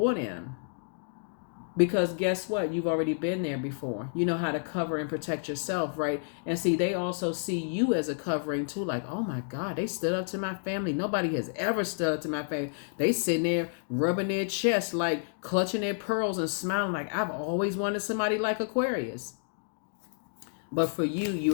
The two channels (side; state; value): right; silent; digital silence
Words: them, because guess what, you've already been there before. You know how to cover and protect yourself, right? And see, they also see you as a covering too, like, oh my god, they stood up to my family. Nobody has ever stood up to my family. They sitting there rubbing their chest, like clutching their pearls and smiling, like, I've always wanted somebody like Aquarius. But for you,